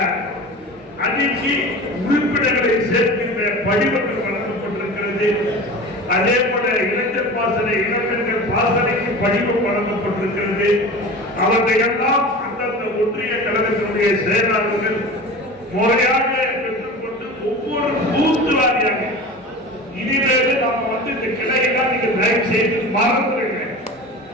அணிக்கு உறுப்பினர்களை சேர்க்கின்ற படிவங்கள் வழங்கப்பட்டிருக்கிறது. அதே போல இளைஞர் பாசறை இளம்பெண்கள் பாசறைக்கு படிவம் வழங்கப்பட்டிருக்கிறது. அவற்றையெல்லாம் அந்தந்த ஒன்றிய கழகத்தினுடைய செயலாளர்கள் முறையாக பெற்றுக்கொண்டு ஒவ்வொரு பூத்து வாரியாக இனிமேல் நாம இந்த கிளையெல்லாம் நீங்க தயவு செய்து மறந்துருங்க.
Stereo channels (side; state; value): both; normal; correlation 0.34